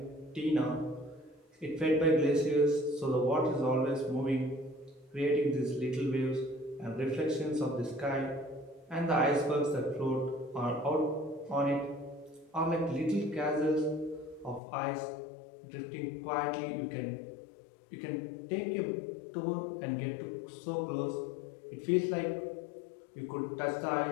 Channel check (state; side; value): drops out; right; at 14.6 s